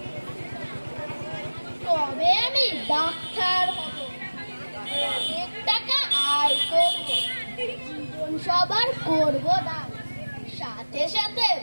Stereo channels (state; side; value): inverted; both; correlation -1.00